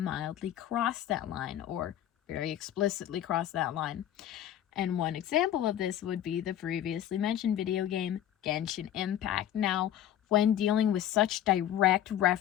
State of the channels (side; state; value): right; quieter; 11.2 dB